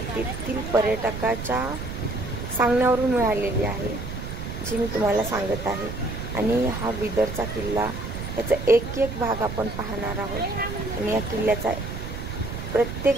तेथील पर्यटकाच्या सांगण्यावरून मिळालेली आहे, जी मी तुम्हाला सांगत आहे। आणि हा बिदरचा किल्ला त्याचा एक एक भाग आपण पाहणार आहोत आणि या किल्ल्याचा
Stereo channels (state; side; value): noise; right; rumble, 7 dB below the sound